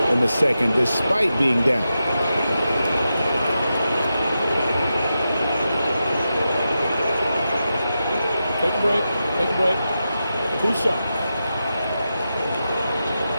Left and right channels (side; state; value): both; inverted; correlation -0.89